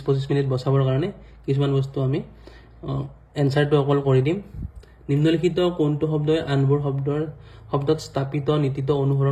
মিনিট বচাবৰ কাৰণে কিছুমান বস্তু আমি आंसरটো অকল কৰি দিম নিম্নলিখিত কোনটো শব্দই আনবোৰ শব্দত স্থাপিত নীতিত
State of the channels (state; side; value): identical; both; correlation 1.00